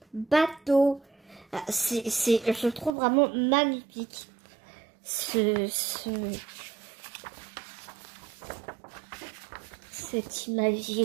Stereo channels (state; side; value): drops out; left; at 2.9 s